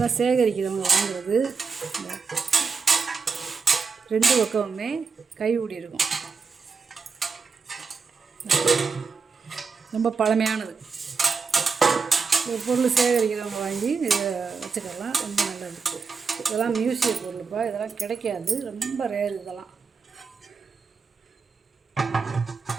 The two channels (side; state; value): left; quieter; 5.1 dB